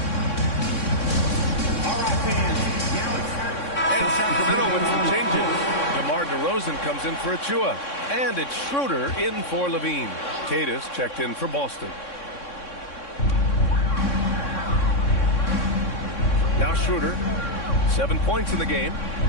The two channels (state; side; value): late; right; 3.6 ms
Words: And Sacramento with some changes. DeMar DeRozan comes in for Achua. And it's Schroeder in for Levine. Tatus checked in for Boston. Now Schroeder, 7 points in the game.